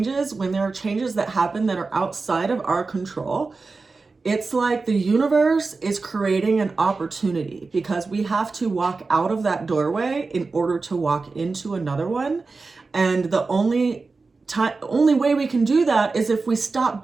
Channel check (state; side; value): quieter; left; 4.0 dB